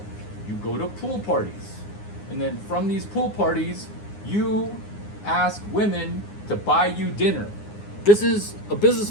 you go to pool parties, and then from these pool parties, you ask women to buy you dinner. This is a business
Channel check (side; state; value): right; late; 9.7 ms